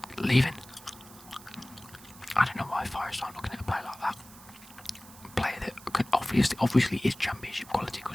leaving. I don't know why Forest aren't looking at a player like that. A player that could obviously is championship quality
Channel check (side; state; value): right; noise; hiss, 20 dB below the sound